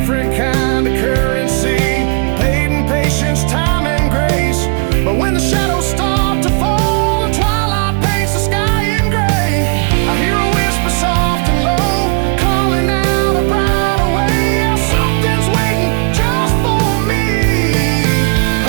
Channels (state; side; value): quieter; left; 37.3 dB